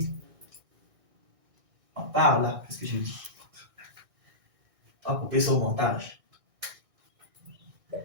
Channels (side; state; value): left; late; 1.6 ms